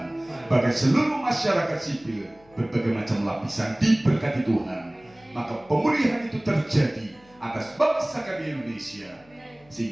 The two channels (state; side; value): noise; left; hum, 28 dB below the sound